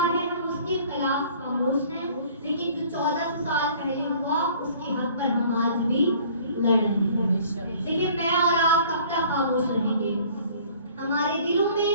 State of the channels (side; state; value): both; inverted; correlation -0.52